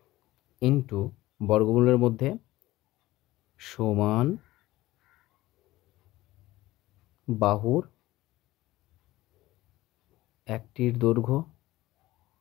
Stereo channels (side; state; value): right; quieter; 17.3 dB